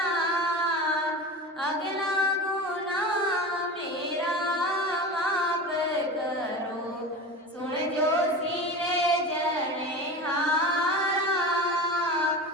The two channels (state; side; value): normal; both; correlation 0.29